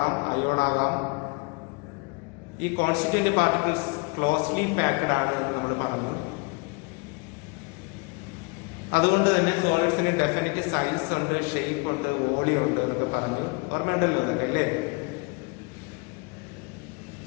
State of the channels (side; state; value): right; quieter; 30.1 dB